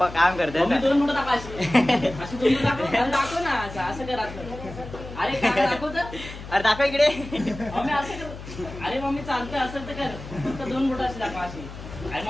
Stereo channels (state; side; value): noise; left; hum, 12 dB below the sound